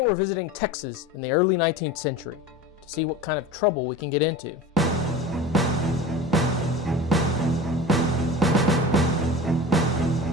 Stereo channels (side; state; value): both; normal; correlation 0.34